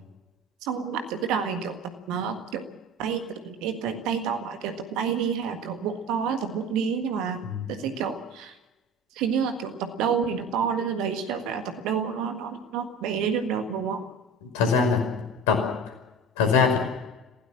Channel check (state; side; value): normal; both; correlation 0.34